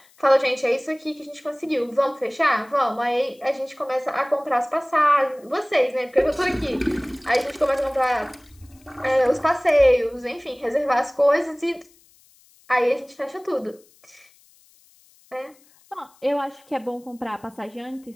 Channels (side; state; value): left; noise; hiss, 30 dB below the sound